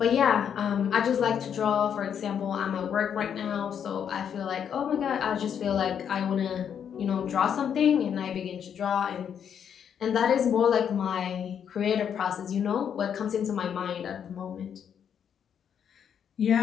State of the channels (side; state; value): right; quieter; 8.2 dB